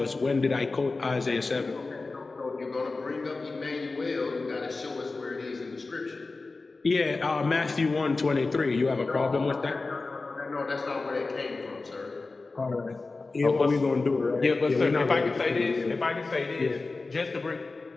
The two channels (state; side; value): quieter; right; 3.7 dB